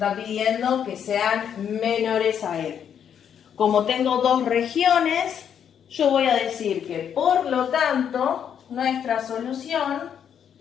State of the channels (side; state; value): right; quieter; 8.5 dB